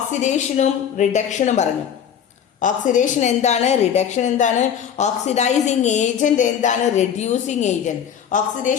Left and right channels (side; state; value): right; quieter; 8.4 dB